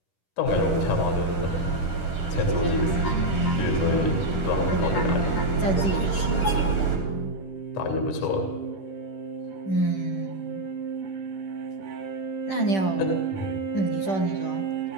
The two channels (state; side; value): late; right; 10 ms